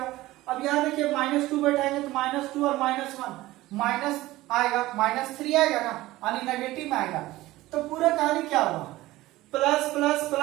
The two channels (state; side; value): quieter; left; 17.5 dB